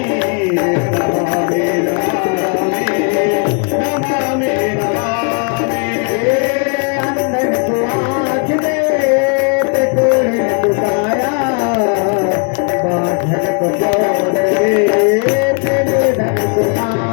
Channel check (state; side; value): quieter; right; 36.8 dB